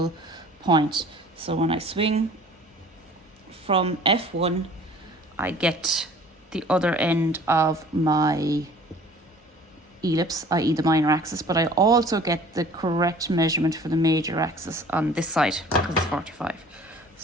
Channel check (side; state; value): both; normal; correlation 0.49